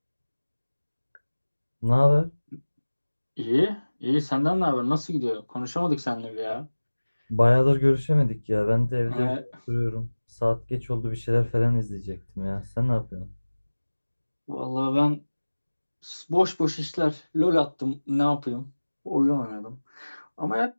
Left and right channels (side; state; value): both; inverted; correlation -1.00